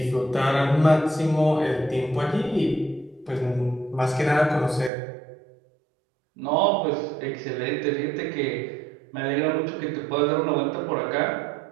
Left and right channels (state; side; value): drops out; left; at 4.9 s